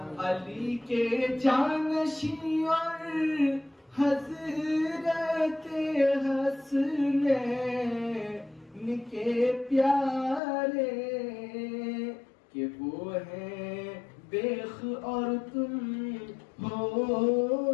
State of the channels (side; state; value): right; drops out; at 10.4 s